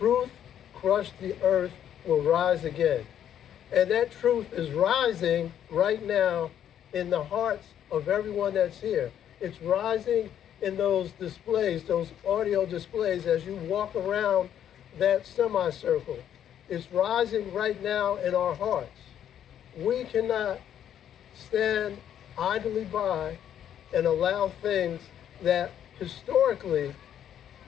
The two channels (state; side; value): quieter; right; 10.0 dB